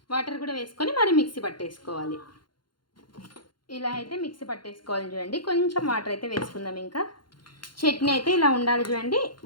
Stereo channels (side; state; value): right; late; 0.72 ms